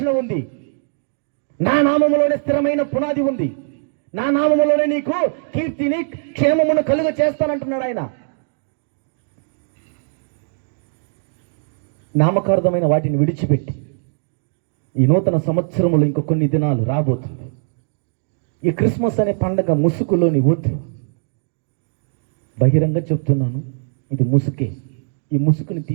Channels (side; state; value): left; silent; digital silence